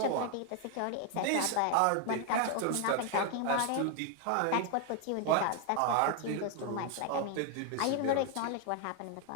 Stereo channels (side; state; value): both; different; correlation 0.00